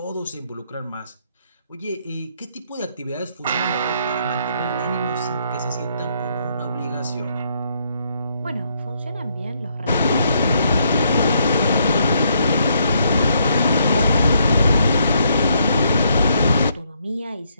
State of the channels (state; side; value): inverted; both; correlation -0.73